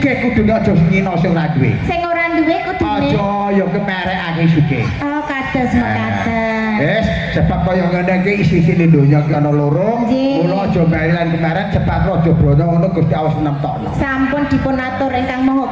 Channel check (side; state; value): both; identical; correlation 1.00